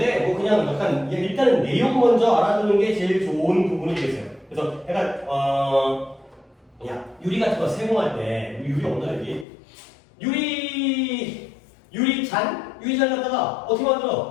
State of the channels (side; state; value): right; drops out; at 9.5 s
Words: 뭐 그냥 약간 일단은 내용 먼저 알아두는 게 제일 좋은 부분이 되겠어요. 그래서 약간 야, 유리 같은 거 세공할 때 유리 없나 여기? 유리잔 갖다가 어떻게